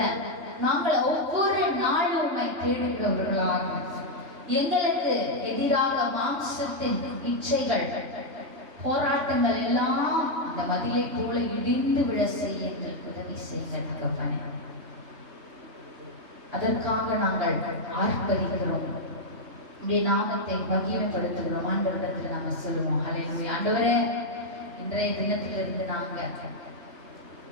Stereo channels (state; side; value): late; left; 3.3 ms